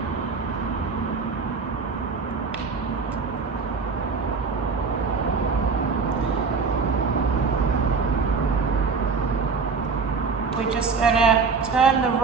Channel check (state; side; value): quieter; left; 4.9 dB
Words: We're just going to turn the